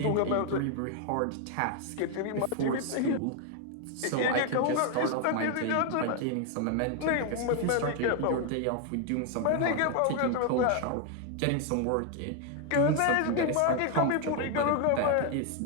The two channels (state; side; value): different; both; correlation 0.01